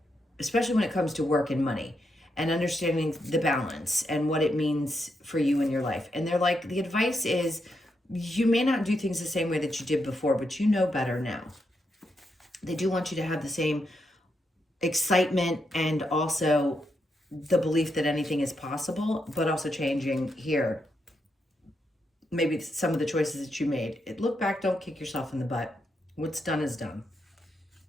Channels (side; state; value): both; normal; correlation 0.82